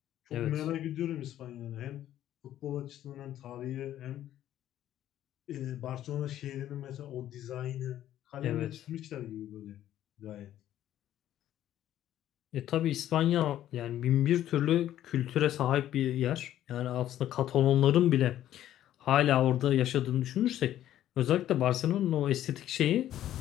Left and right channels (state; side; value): quieter; right; 12.2 dB